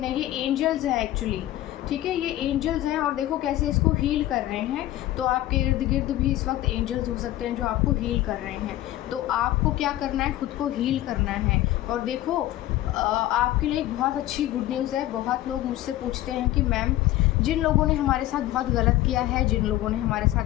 है, ये एंजल्स हैं एक्चुअली, ठीक है। ये एंजल्स हैं और देखो कैसे इसको हील कर रहे हैं। तो आपके इर्द गिर्द भी इस वक्त एंजल्स हो सकते हैं जो आपको हील कर रहे हैं। तो आपको क्या करना है, खुद को हील करना है। और देखो आपके लिए एक बहुत अच्छी गुड न्यूज़ है। बहुत लोग मुझसे पूछते हैं कि मैम, जिन लोगों ने हमारे साथ बहुत गलत किया है, जिन लोगों ने हमारे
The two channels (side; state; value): right; quieter; 14.9 dB